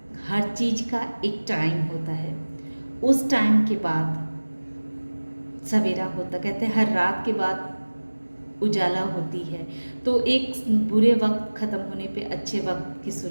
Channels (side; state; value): both; inverted; correlation -1.00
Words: हर चीज़ का एक टाइम होता है। उस टाइम के बाद सवेरा होता, कहते हैं हर रात के बाद उजाला होती है। तो एक बुरे वक्त ख़त्म होने पे अच्छे वक्त की